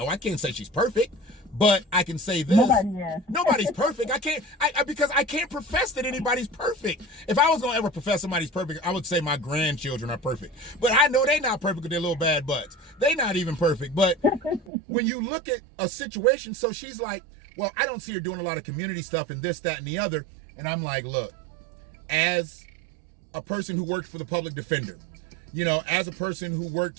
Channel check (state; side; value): drops out; left; at 14.7 s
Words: I can't say she's perfect, but I can say this. Nobody's perfect. Because I can't profess that anybody's perfect. If I was gonna ever profess somebody's perfect, I would say my grandchildren are perfect. But I know they're not perfect with their little bad butts. They're not even perfect. But when you look at a situation, so she's like, well, I don't see her doing a lot of community stuff and this, that, and the other. And I'm like, look, as a person who worked for the public defender, you know, as a person who